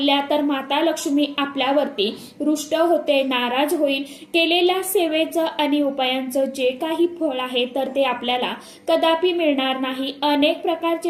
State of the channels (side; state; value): both; identical; correlation 1.00